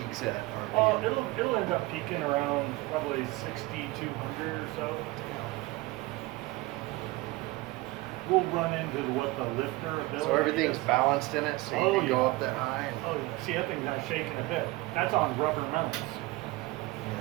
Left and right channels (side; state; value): left; quieter; 21.1 dB